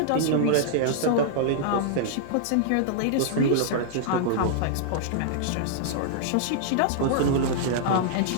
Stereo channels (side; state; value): both; different; correlation -0.01